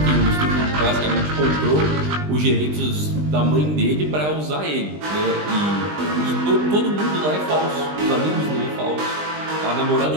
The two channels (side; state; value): left; late; 20 ms